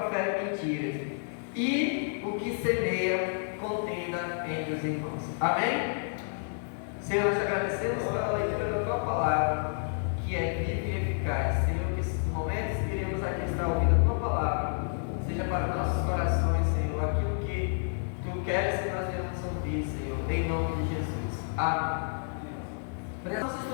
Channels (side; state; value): right; silent; digital silence